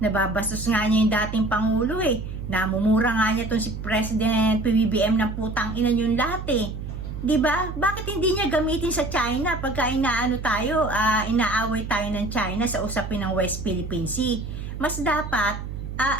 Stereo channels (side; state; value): right; noise; hum, 8 dB below the sound